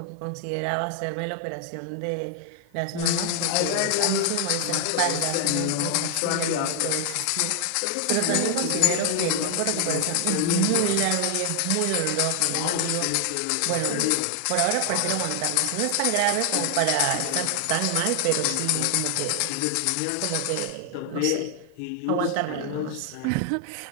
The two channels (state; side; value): different; both; correlation 0.00